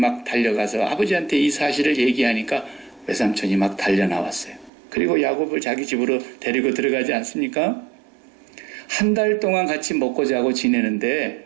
달려가서 아버지한테 이 사실을 얘기하니까 외삼촌이 막 달려나왔어요. 그리고 야곱을 자기 집으로 데리고 들어가지 않습니까? 한 달 동안 같이 먹고 자고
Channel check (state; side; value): drops out; left; at 4.7 s